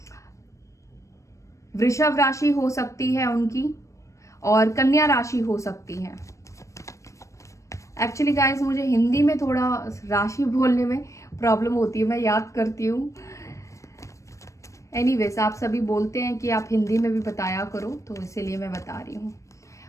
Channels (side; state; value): right; late; 0.15 ms